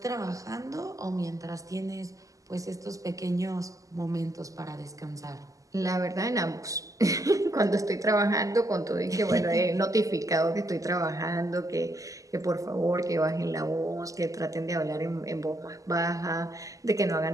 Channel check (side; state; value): left; late; 0.16 ms